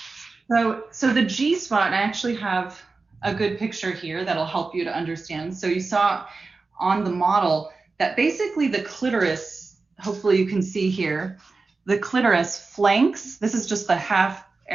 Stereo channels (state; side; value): quieter; left; 4.0 dB